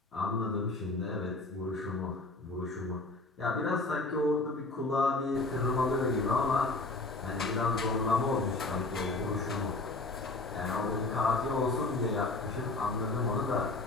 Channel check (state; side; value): quieter; right; 3.2 dB